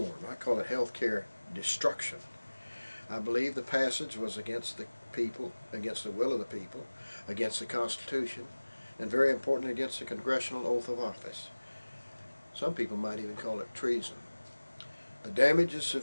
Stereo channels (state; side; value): inverted; both; correlation -1.00